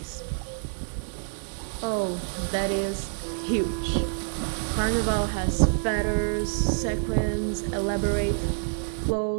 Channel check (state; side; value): silent; left; digital silence